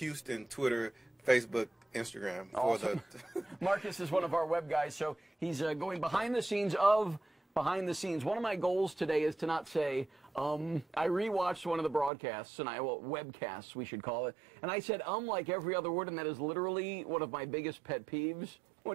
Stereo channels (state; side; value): drops out; left; at 12.1 s